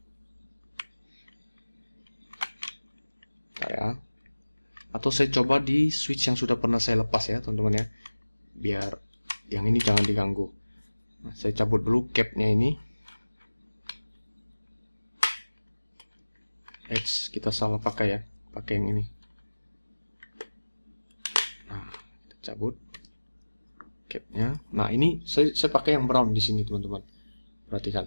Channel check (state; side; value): inverted; both; correlation -1.00